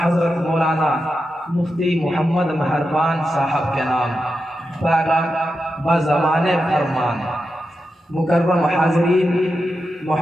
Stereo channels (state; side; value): normal; both; correlation 0.89